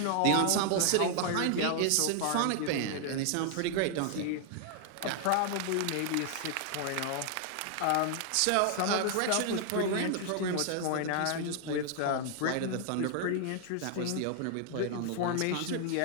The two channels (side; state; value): both; different; correlation 0.00